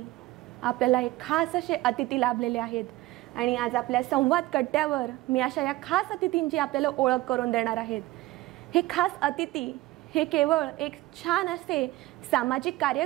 आपल्याला एक खास असे अतिथी लाभलेले आहेत आणि आज आपल्या संवाद कट्ट्यावर मी अशा या खास अतिथींची आपल्याला ओळख करून देणार आहेत. हे खास अतिथी हे केवळ एक छान असे सामाजिक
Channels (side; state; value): left; quieter; 18.2 dB